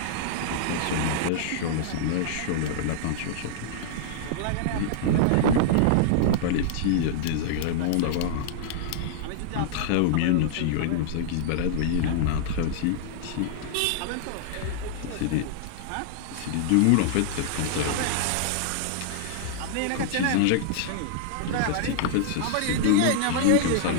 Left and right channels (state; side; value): different; both; correlation -0.01